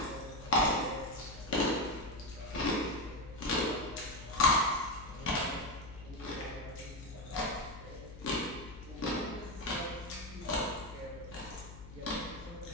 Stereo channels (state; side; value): noise; left; hum, 14 dB below the sound